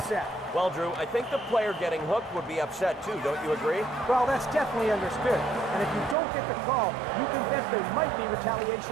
Well, Drew, I think the player getting hooked would be upset too, don't you agree? Well, that's definitely understood. And if you don't get the call, you can bet there might be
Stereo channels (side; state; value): left; drops out; at 6.2 s